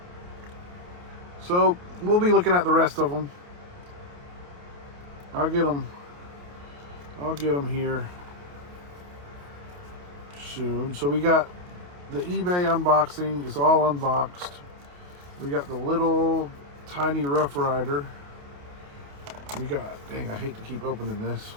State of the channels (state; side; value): late; left; 28 ms